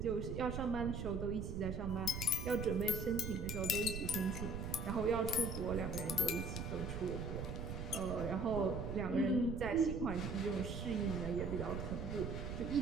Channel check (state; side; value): noise; right; rumble, 4 dB below the sound